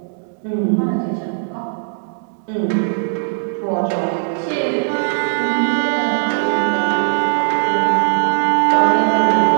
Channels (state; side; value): silent; left; 67 dB below the other